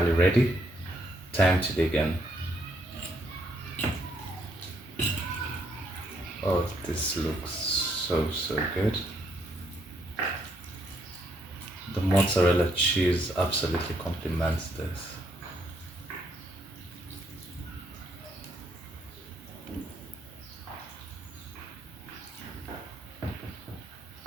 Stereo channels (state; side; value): normal; both; correlation 0.72